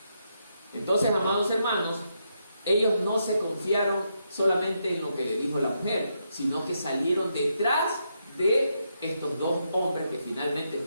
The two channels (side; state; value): both; inverted; correlation -0.80